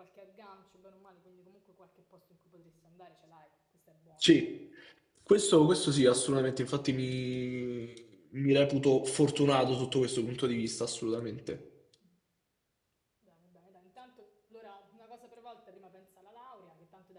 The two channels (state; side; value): identical; both; correlation 1.00